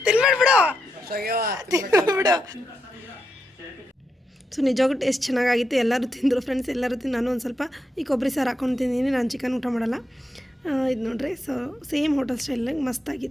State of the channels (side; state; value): both; normal; correlation 0.84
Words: ಬಿಡು ಬಿಡು. ಸೊ ನಿಜವಾಗೂ ಟೇಸ್ಟ್ ಚೆನ್ನಾಗಾಗಿತ್ತು. ಎಲ್ಲರೂ ತಿಂದರು ಫ್ರೆಂಡ್ಸ್, ಎಲ್ಲರೂ ತಿಂದು. ನಾನು ಒಂದು ಸ್ವಲ್ಪ ಈ ಕೊಬ್ಬರಿ ಸಾರು ಹಾಕೊಂಡು ತಿಂದಿದ್ದೀನಿ. ನಾನು ಚಿಕನ್ ಊಟ ಮಾಡಲ್ಲ. ಇದು ನೋಡ್ರಿ, ಸೊ ಸೇಮ್ ಹೋಟೆಲ್ ಸ್ಟೈಲಾಗಿ